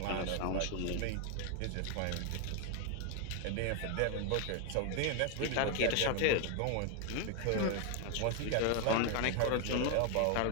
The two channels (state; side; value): different; both; correlation 0.01